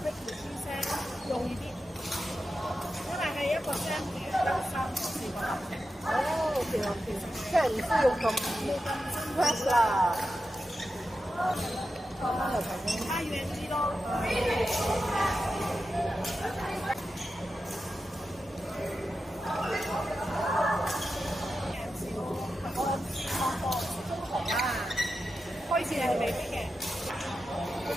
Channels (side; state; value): both; normal; correlation 0.90